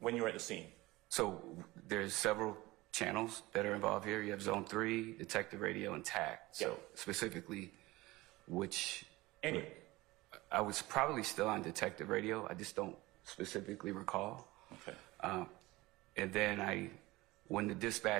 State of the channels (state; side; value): quieter; left; 20.1 dB